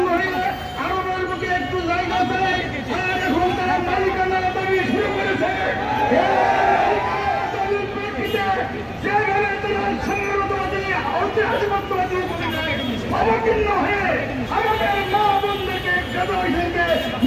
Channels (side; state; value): both; identical; correlation 1.00